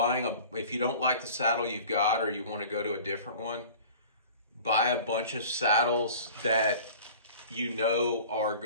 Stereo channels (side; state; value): both; inverted; correlation -0.43